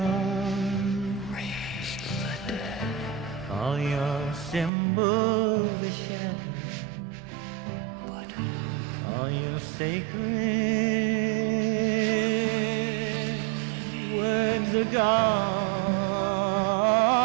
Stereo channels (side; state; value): left; drops out; at 4.7 s